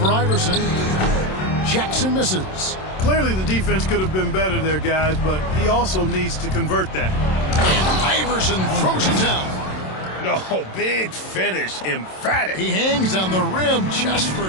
Iverson. Jackson misses. Clearly the defense could have been better there, guys, but he also needs to convert that. And Iverson throws it down. No, big finish, emphatic. He hangs on the rim just for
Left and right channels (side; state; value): right; late; 27 ms